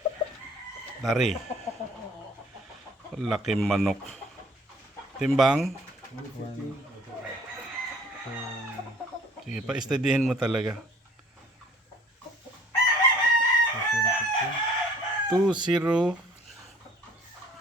Dari. Laki manok. Timbang. Sige, pa-steadyhin mo talaga. 2-0.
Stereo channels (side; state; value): both; normal; correlation 0.54